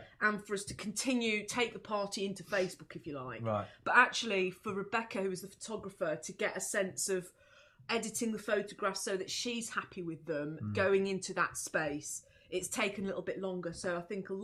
and for us to take the party into Facebook, if you like. Right. But actually, for Rebecca, who was the photographer, to get a sense of editing the photographs so that she's happy with them going into that space, it's taken a little bit longer. So I think a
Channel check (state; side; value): identical; both; correlation 1.00